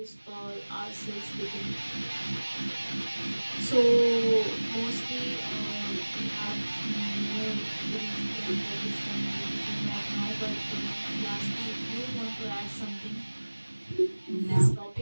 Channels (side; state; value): both; inverted; correlation -1.00